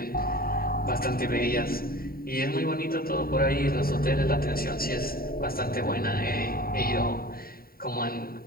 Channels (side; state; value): right; late; 0.43 ms